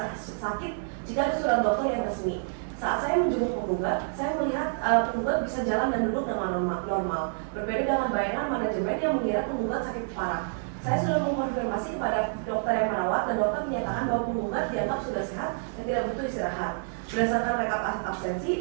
jika ada surat dokter yang resmi. Saat saya menjenguk penggugat, saya melihat penggugat bisa jalan dan duduk dengan normal. Berbeda dengan bayangan manajemen yang mengira penggugat sakit parah. Saya sudah mengkonfirmasi kepada dokter yang merawat dan dokter menyatakan bahwa penggugat dianggap sudah sehat dan tidak butuh istirahat. Berdasarkan rekap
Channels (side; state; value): left; silent; digital silence